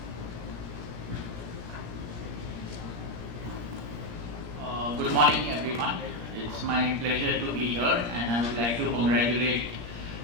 Good morning, everyone. It's my pleasure to be here, and I would like to congratulate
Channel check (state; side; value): late; left; 17 ms